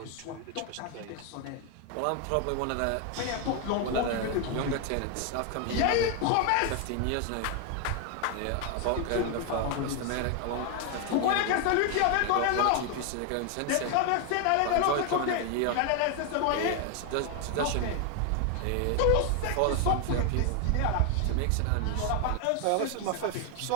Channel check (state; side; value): different; both; correlation 0.01